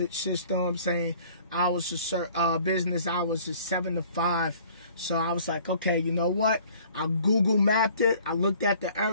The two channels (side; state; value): both; inverted; correlation -0.53